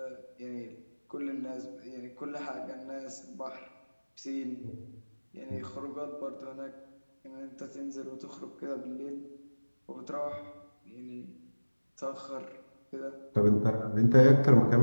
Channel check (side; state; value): both; inverted; correlation -1.00